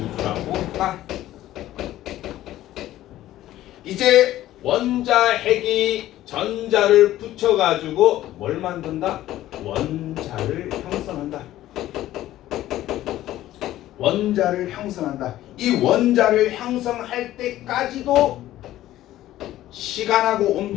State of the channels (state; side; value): quieter; right; 14.2 dB